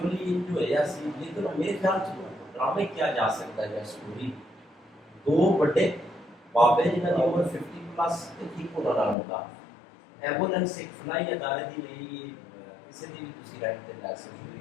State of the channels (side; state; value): right; drops out; at 9.2 s